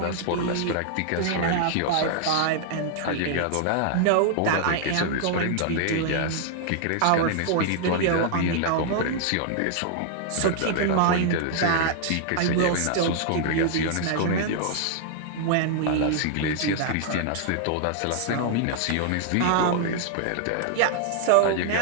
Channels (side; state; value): both; different; correlation 0.00